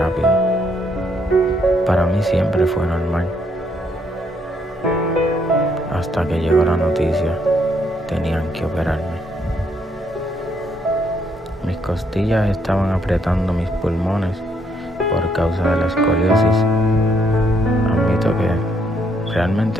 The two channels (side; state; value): both; normal; correlation 0.72